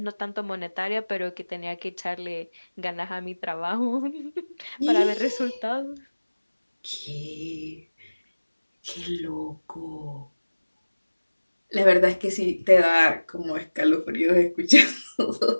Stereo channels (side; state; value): both; inverted; correlation -1.00